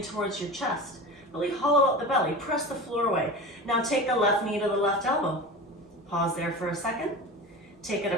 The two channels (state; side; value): normal; both; correlation 0.31